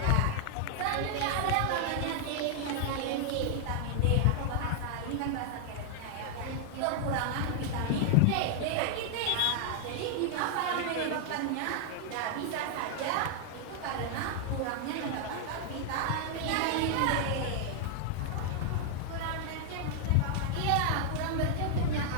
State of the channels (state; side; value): different; both; correlation 0.00